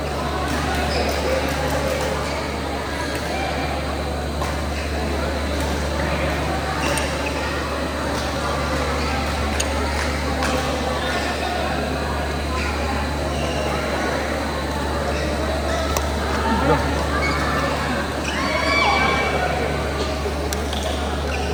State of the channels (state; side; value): identical; both; correlation 1.00